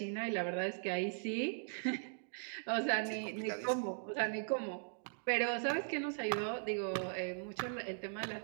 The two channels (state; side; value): silent; left; digital silence